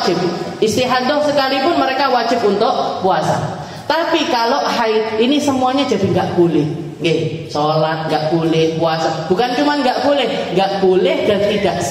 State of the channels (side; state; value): both; identical; correlation 1.00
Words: Istihadah sekalipun mereka wajib untuk puasa. Tapi kalau haid ini semuanya jadi nggak boleh. Sholat nggak boleh, puasa bukan cuma nggak boleh dan tidak